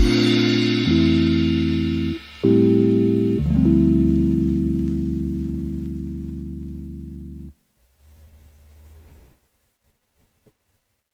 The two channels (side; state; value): both; identical; correlation 1.00